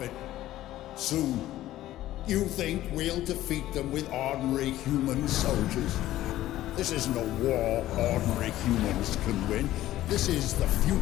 Soon. You think we'll defeat them with ordinary human soldiers? This isn't a war ordinary humans can win. This is the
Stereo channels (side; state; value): right; quieter; 14.5 dB